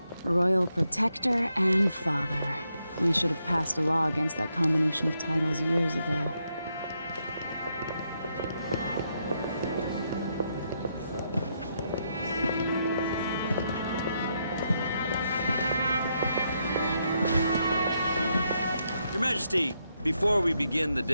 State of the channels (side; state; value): both; inverted; correlation -0.79